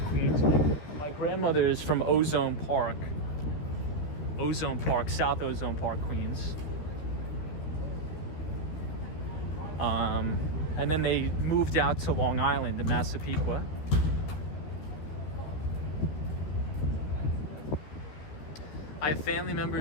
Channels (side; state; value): right; late; 13 ms